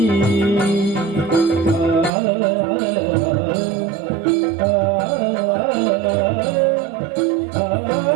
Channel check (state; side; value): drops out; left; at 2.1 s